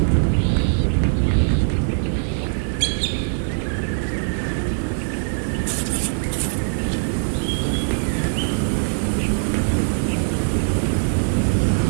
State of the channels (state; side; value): silent; left; digital silence